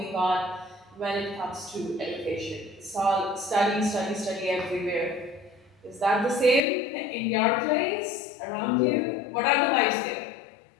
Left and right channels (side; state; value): right; drops out; at 6.6 s